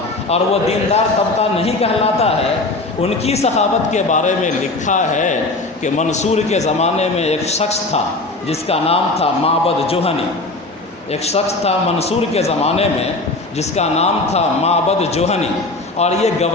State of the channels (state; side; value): quieter; right; 3.0 dB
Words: اور وہ دیندار طبقہ نہیں کہلاتا ہے، ان کی سخاوت کے بارے میں لکھا ہے کہ منصور کے زمانے میں ایک شخص تھا جس کا نام تھا معبد جوہنی۔ ایک شخص تھا منصور کے زمانے میں جس کا نام تھا معبد جوہنی، اور یہ